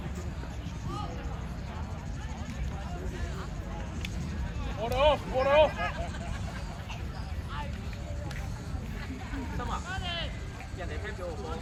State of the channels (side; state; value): both; identical; correlation 1.00